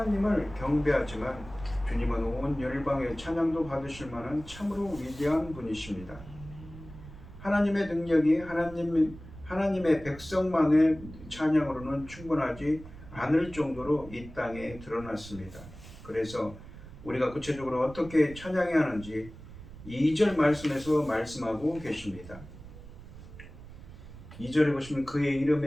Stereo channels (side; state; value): right; noise; rumble, 16 dB below the sound